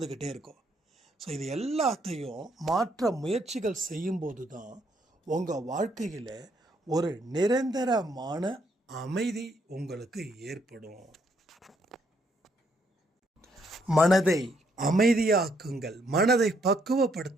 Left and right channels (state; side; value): normal; both; correlation 0.72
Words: இருக்கோம். ஸோ இது எல்லாத்தையும் மாற்ற முயற்சிகள் செய்யும்போது தான் உங்கள் வாழ்க்கையில் ஒரு நிரந்தரமான அமைதி உங்களுக்கு ஏற்படும். மனதை அமைதியாக்குங்கள், மனதை